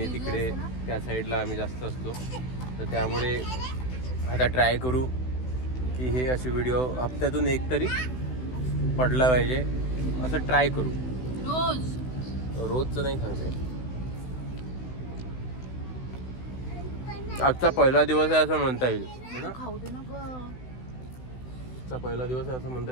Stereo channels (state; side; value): late; right; 16 ms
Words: तिकडे त्या साईडला आम्ही जास्त असतो. तर त्यामुळे आता ट्राय करू की हे असे व्हिडिओ हप्त्यातून एक तरी पडला पाहिजे, असं ट्राय करू. रोजचं नाही सांगता येत. आजचा पहिला दिवस आहे असं म्हणता येईल. खाऊ दे ना गं. आजचा पहिला दिवस आहे असं म्हणता